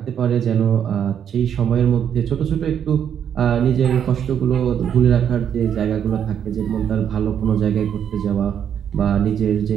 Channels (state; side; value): quieter; left; 8.7 dB